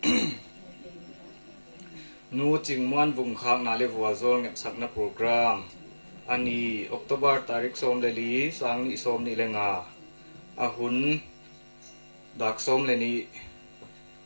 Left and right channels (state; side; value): inverted; both; correlation -1.00